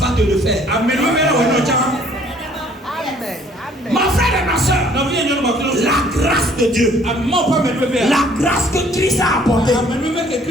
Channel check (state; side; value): normal; both; correlation 0.58